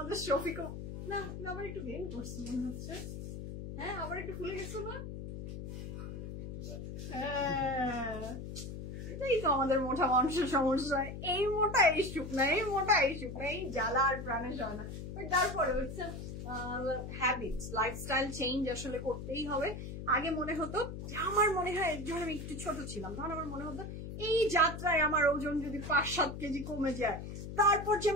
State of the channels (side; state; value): left; noise; hum, 8 dB below the sound